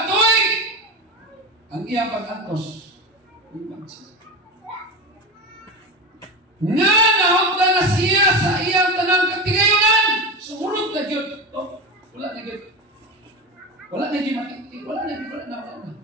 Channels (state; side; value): normal; both; correlation 0.22